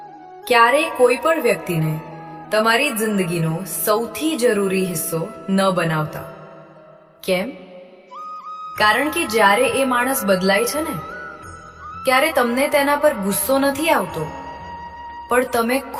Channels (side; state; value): both; identical; correlation 1.00